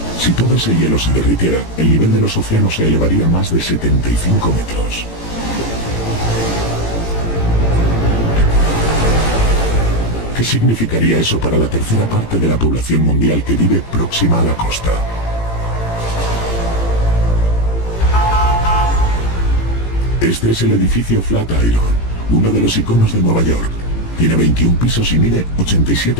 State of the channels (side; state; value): right; late; 18 ms